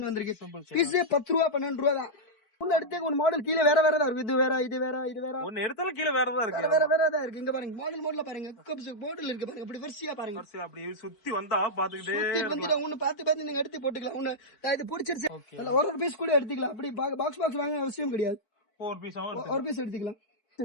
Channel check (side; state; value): right; late; 4.5 ms